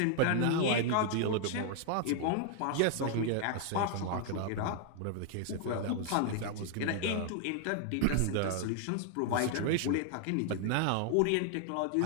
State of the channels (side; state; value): both; different; correlation 0.00